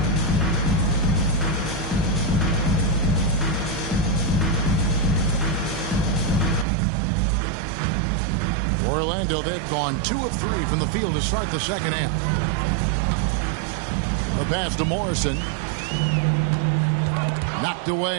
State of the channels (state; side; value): drops out; left; at 6.7 s